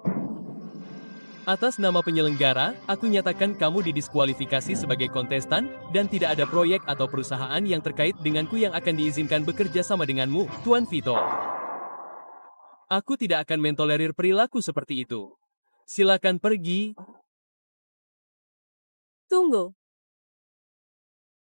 Atas nama penyelenggara, aku nyatakan kamu didiskualifikasi sebagai kontestan, dan tidak ada proyek atau perusahaan yang terkait denganku yang akan diizinkan bekerja sama denganmu, Tuan Vito. Aku tidak akan mentolerir perilaku seperti itu. Silakan pergi. Tunggu.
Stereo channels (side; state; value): both; inverted; correlation -1.00